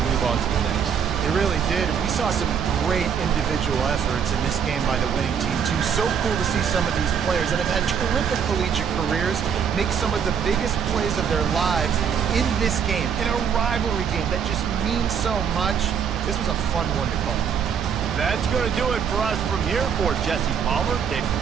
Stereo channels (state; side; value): quieter; left; 7.4 dB